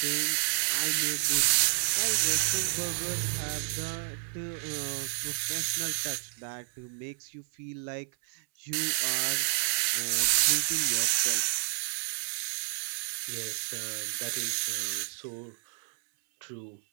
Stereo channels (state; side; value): silent; left; 58 dB below the other